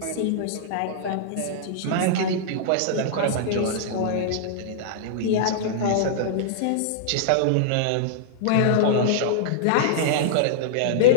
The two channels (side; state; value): both; different; correlation -0.02